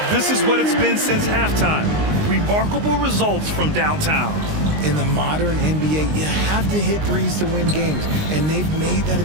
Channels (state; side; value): late; left; 19 ms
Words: This is what it's been since halftime. Remarkable results from downtown. In the modern NBA, you have to hit threes to win games, and they've made that